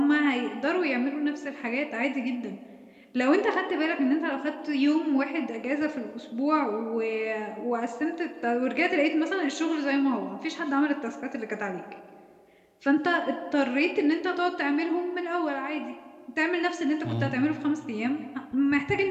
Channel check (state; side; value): identical; both; correlation 1.00